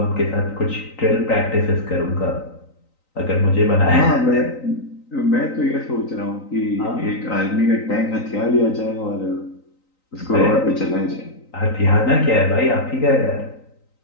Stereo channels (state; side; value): late; right; 3.9 ms